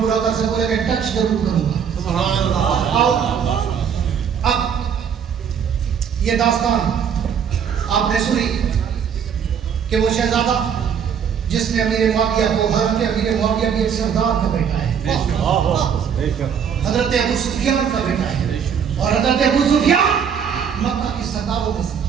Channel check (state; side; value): quieter; left; 7.6 dB